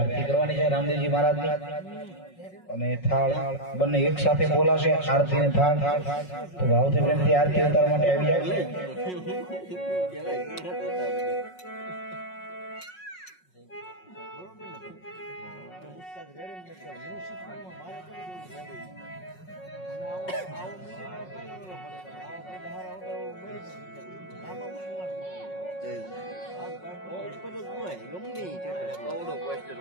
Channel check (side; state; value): right; late; 5.4 ms